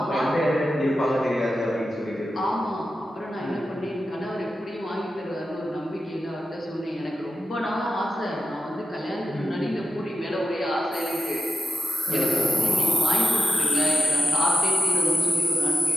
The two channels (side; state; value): both; normal; correlation 0.90